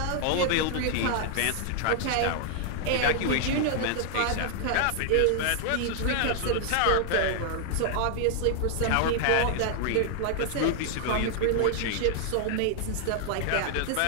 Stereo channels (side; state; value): both; different; correlation 0.00